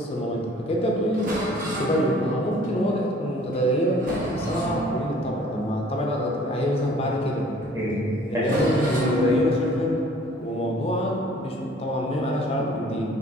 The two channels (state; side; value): normal; both; correlation 0.53